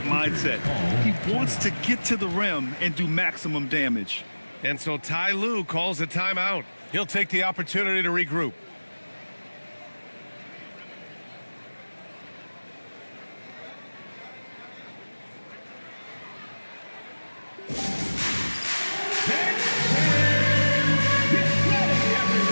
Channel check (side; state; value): both; inverted; correlation -1.00